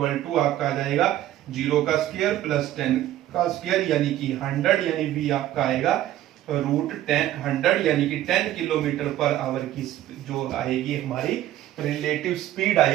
= आपका आ जाएगा 0 का स्क्वायर प्लस 10 का स्क्वायर, यानी कि 100, यानी v आपका आएगा √10 यानी कि 10 किलोमीटर पर आवर की जो आएगी हमारी रिलेटिव स्पीड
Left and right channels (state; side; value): quieter; left; 13.3 dB